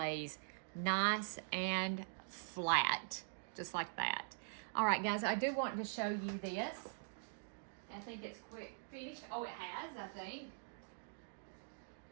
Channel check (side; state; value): left; silent; digital silence